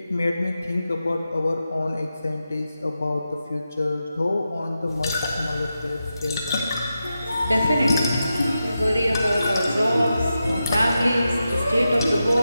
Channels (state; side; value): inverted; both; correlation -0.89